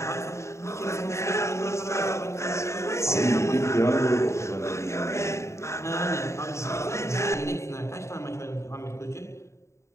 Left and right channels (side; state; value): right; late; 0.14 ms